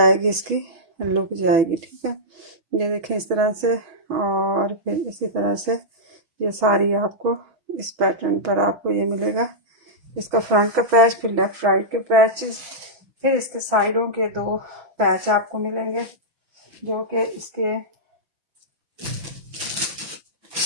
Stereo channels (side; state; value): left; late; 6.0 ms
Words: इसकी लुक जाएगी। ठीक है, ये देखें इस तरह से, और फिर इसी तरह से ये सारी आपको इस पैटर्न पर आपको ये मिलेगा। इसका फ्रंट का पैच, फिर लेफ्ट राइट के पैचेस, फिर इसके साइडों के 2 पैच आपको मिलेंगे, जो कि इसके